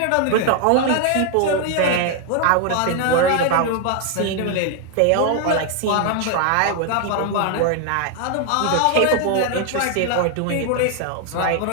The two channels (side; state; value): both; different; correlation 0.00